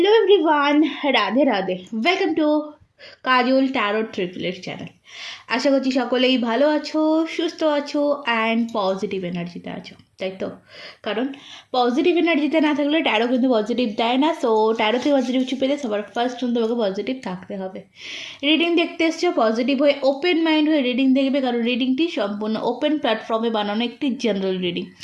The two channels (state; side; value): identical; both; correlation 1.00